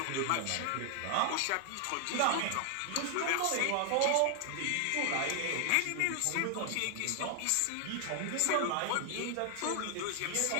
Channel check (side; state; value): both; different; correlation 0.00